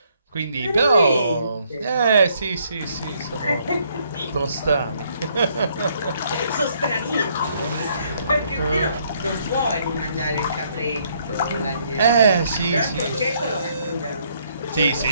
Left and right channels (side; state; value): both; inverted; correlation -0.69